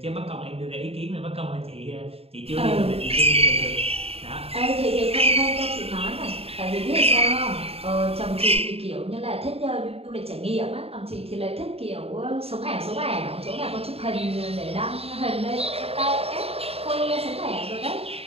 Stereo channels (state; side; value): late; left; 0.29 ms